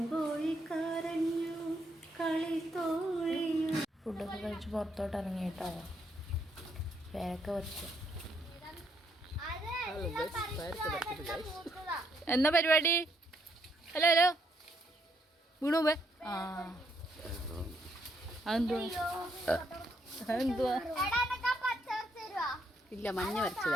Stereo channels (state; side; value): normal; both; correlation 0.74